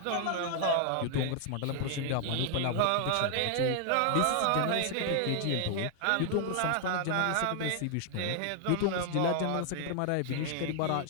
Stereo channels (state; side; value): different; both; correlation 0.00